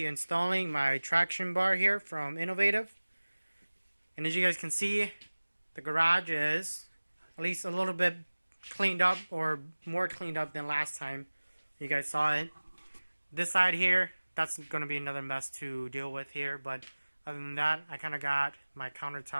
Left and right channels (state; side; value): inverted; both; correlation -1.00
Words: installing my traction bar here from Innovative. And as you guys can see, the garage is at least a little bit cleaned up, or more cleaned up than last time you guys saw it. This side here, that's going to be another mess to deal with here, but other than that, I kind of got my